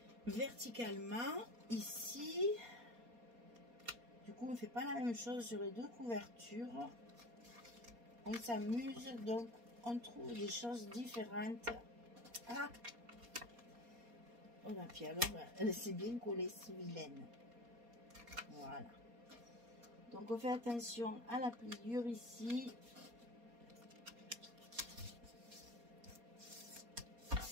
Verticalement, ici, du coup, on ne fait pas la même chose sur les deux couvertures. On s'amuse, donc on trouve des choses différentes. Ah! Oh là, puis alors, elle s'est bien collée, c'est vilaine. Voilà. Donc, on fait attention à la pliure ici.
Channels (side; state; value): left; late; 4.2 ms